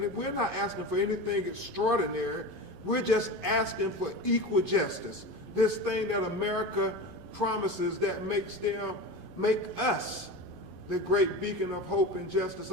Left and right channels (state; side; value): late; left; 11 ms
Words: we're not asking for anything extraordinary. We're just asking for equal justice. This thing that America promises that make us the great beacon of hope and justice